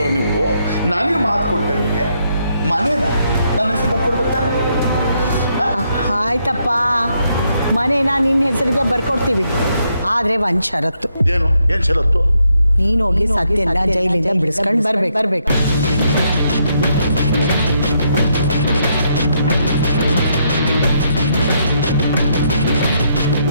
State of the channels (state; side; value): inverted; both; correlation -0.76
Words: ನೀವು. ನನಗೆ ಮಾತು ಕೊಟ್ಟೆ, ನಿಮಗೆ ಮನೇನ ನನ್ನ ಹೆಸರು ಬರ್ಕೊಡ್ಬೇಕಾನೆ. ಆಯ್ತಪ್ಪ, ಮನೇನ ನಿನ್ನ ಹೆಸರಿಗೆ ಬರ್ಕೊಡ್ತೀವಿ. ಆದರೆ ಒಂದು ಷರತ್ತು. ಏನು ಷರತ್ತು? ನೀನು ಹೋಗಿ ಸತ್ಯನ ಜೈಲಿಂದ ಬಿಡಿಸ್ಕೊಂಡು ಬರ್ಬೇಕು.